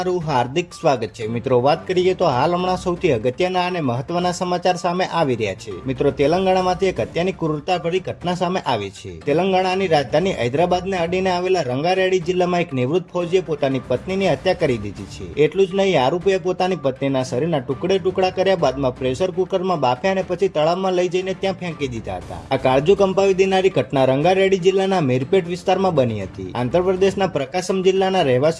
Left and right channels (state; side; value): identical; both; correlation 1.00